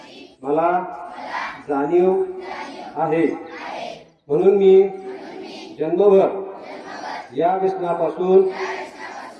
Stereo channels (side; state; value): both; identical; correlation 1.00